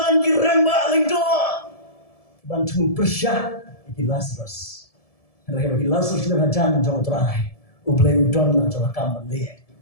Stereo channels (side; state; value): right; late; 1.7 ms